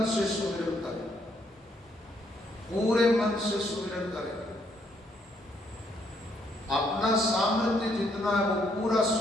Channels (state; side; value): normal; both; correlation 0.71